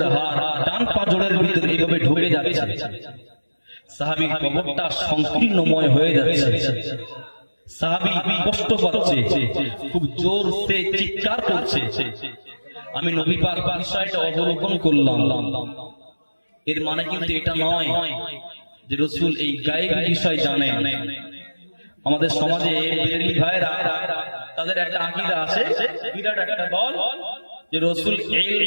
হাড় ডান পাঁজরের ভিতরে এইভাবে ঢুকে যাচ্ছে। সাহাবীর কবরটা সংকীর্ণময় হয়ে যাচ্ছে। সাহাবী কষ্ট পাচ্ছে, খুব জোরসে চিৎকার করছে। আমি নবী পাক বিষয়টা অবলোকন করলাম। এর মানে কিন্তু এটা নয় যে রাসূল এই গায়েব বিষয় জানেন। আমাদের সমাজে বেরেলি ভাইরা, তাদের একটা আকীদা আছে, বিরাট একটা দল, যে রাসূল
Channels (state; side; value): inverted; both; correlation -1.00